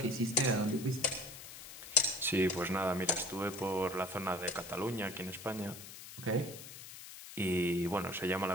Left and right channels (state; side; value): noise; left; hiss, 13 dB below the sound